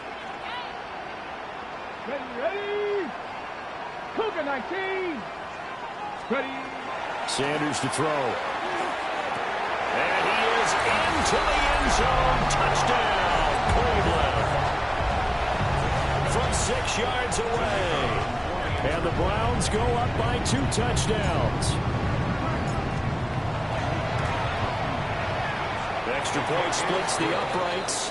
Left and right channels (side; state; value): both; identical; correlation 1.00